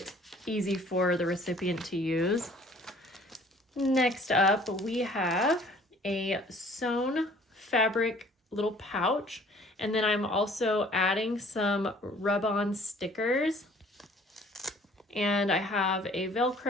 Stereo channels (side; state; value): both; normal; correlation 0.54